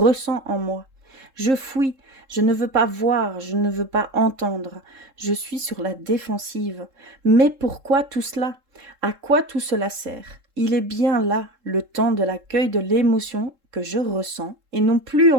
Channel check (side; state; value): left; late; 3.7 ms